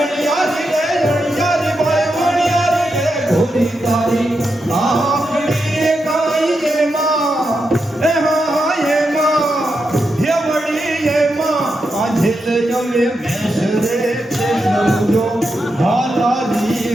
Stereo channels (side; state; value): both; normal; correlation 0.86